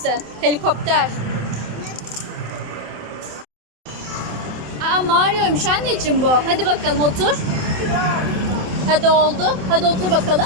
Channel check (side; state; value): left; late; 27 ms